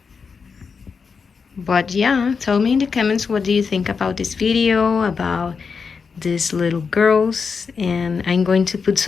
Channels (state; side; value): quieter; right; 5.5 dB